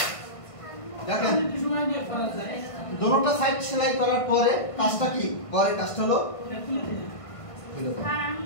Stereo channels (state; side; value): late; right; 1.5 ms